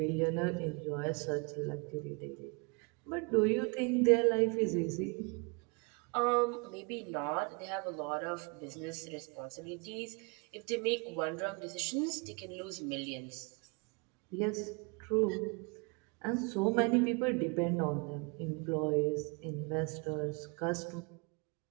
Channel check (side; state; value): left; quieter; 31.6 dB